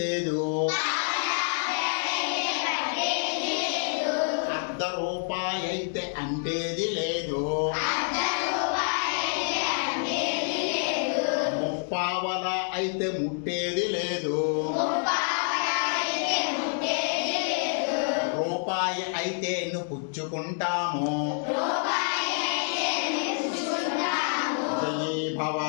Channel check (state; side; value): silent; right; 60 dB below the other